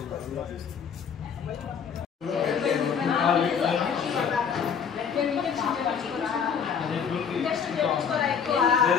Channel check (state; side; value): quieter; right; 6.9 dB